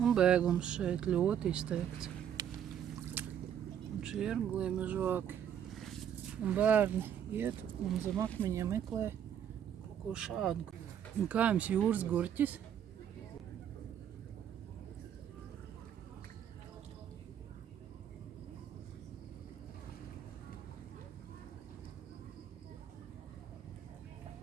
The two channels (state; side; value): quieter; left; 9.3 dB